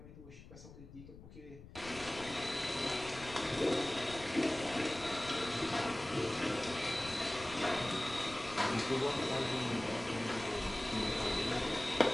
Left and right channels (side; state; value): left; noise; rumble, 16 dB below the sound